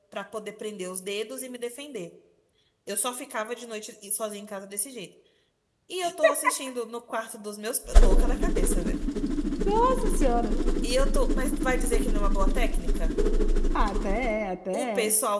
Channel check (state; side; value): identical; both; correlation 1.00